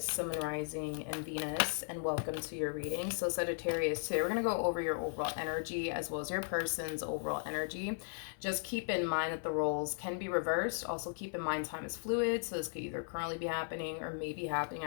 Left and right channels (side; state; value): right; silent; 53 dB below the other